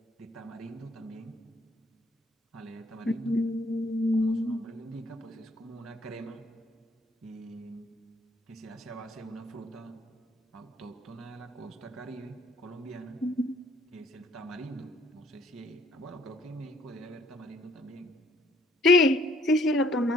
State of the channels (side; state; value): both; normal; correlation 0.62